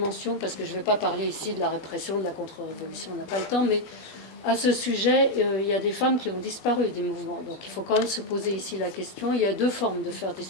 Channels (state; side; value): late; right; 21 ms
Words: parce que je ne vais pas parler ici de la répression, de la contre-révolution, on n'a pas le temps, mais à ce sujet, il y a des femmes qui ont disparu des mouvements. Donc il faut quand même se poser ici la question. Il y a deux formes de faire